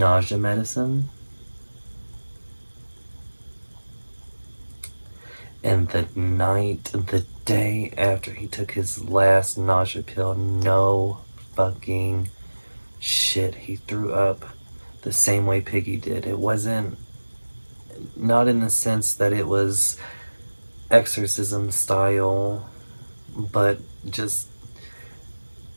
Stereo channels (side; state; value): both; inverted; correlation -1.00